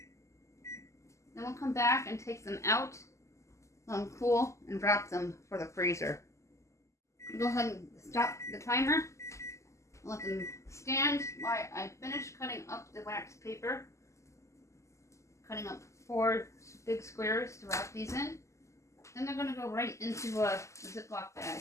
Then we'll come back and take them out, let them cool, and wrap them for the freezer. Go ahead and stop the timer. Let them stand while I finish cutting up the wax paper. Cutting up 4 big squares to wrap these in. Then they're going to go right into a Ziploc bag.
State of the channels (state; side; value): late; right; 0.14 ms